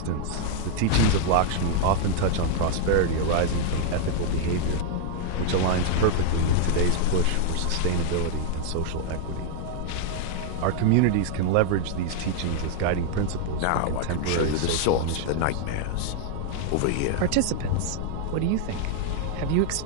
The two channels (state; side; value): different; both; correlation 0.00